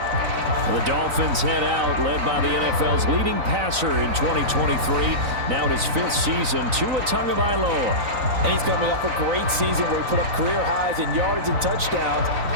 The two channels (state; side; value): late; left; 3.9 ms